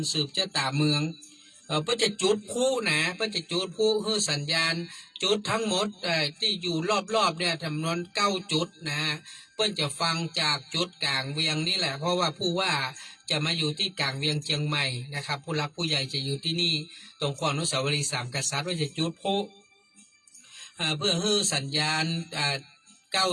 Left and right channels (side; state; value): both; identical; correlation 1.00